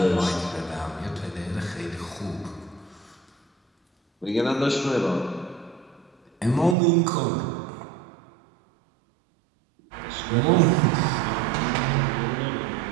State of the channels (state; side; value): drops out; left; at 6.8 s